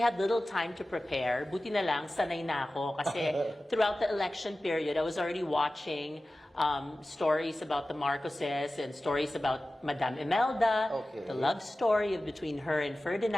little time to prepare. Buti na lang, sanay na ako. Kasi throughout the election period, I was already watching stories about the Marcoses and stories about Madame Imelda, the love story between her and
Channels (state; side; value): normal; both; correlation 0.96